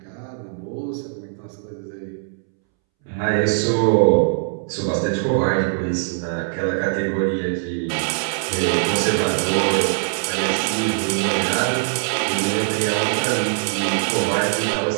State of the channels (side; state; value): left; silent; 65 dB below the other